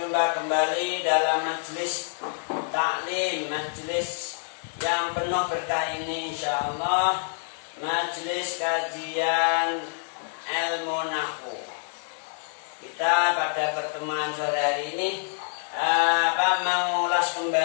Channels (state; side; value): silent; right; digital silence